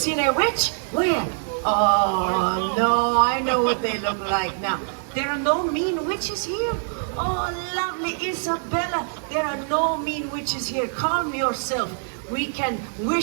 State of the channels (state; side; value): silent; left; 63 dB below the other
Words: a witch? Where? Oh, no, I know what they look like now. There are no mean witches here. Oh, lovely Isabella, there are no mean witches here. Calm yourself. We can